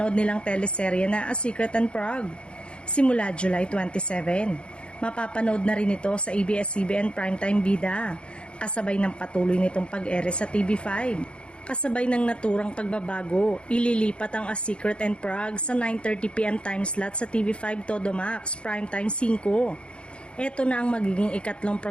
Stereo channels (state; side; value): late; right; 0.057 ms